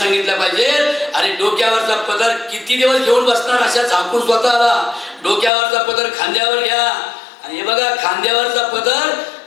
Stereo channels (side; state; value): right; drops out; at 5.5 s